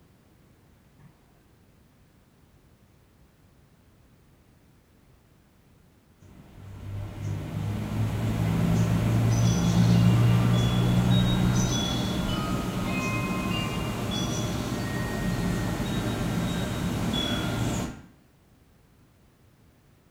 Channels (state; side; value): identical; both; correlation 1.00